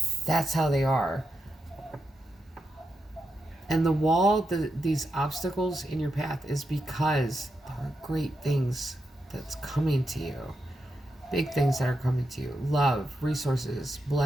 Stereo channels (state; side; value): normal; both; correlation 0.86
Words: that's how they are. And the wall, these obstacles in your path, is because there are great things that's coming to you. Big things that are coming to you. Love, resources,